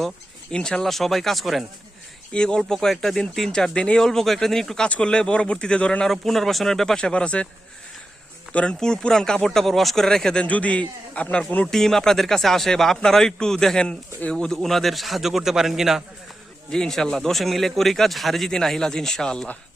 ইনশাআল্লাহ সবাই কাজ করেন। এই অল্প কয়েকটা দিন 3-4 দিন এই অল্প কয়েকটা দিন একটু কাজ করলে পরবর্তীতে ধরেন আরো পুনর্বাসনের ব্যাপার স্যাপার আছে। ধরেন পুরান কাপড় টাপড় ওয়াশ করে রেখে দেন। যদি আপনার কোনো টিম আপনাদের কাছে আসে বা আপনারাও একটু দেখেন ওনাদের সাহায্য করতে পারেন কিনা। জি ইনশাল্লাহ 10 মিলে করি কাজ, হারে জিতি না হিলাজ ইনশাআল্লাহ।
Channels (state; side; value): normal; both; correlation 0.91